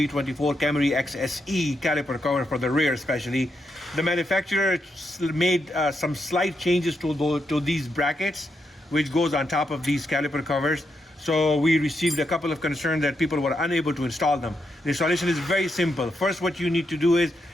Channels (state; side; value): normal; both; correlation 0.82